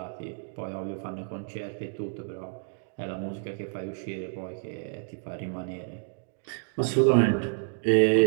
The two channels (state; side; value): silent; left; digital silence